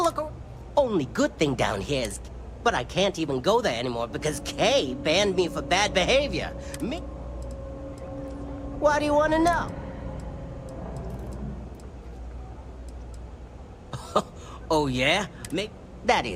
look. Only good thing down here is... But I can't even go there anymore because Kay banned me for bad behavior. Why do you want to know? Oh, yeah? Maybe... That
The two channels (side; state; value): both; identical; correlation 1.00